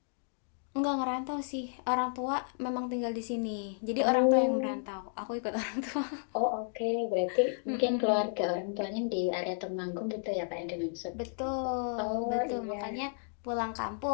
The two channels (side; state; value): right; silent; digital silence